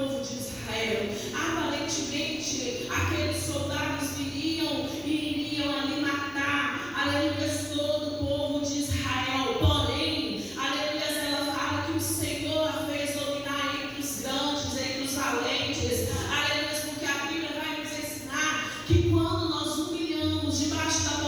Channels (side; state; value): both; identical; correlation 1.00